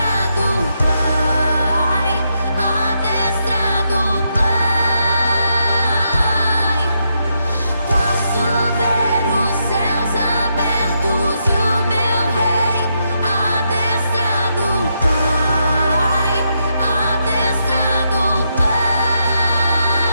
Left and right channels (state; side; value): inverted; both; correlation -0.80